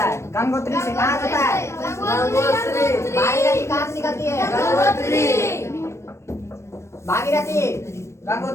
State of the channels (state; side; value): late; right; 0.13 ms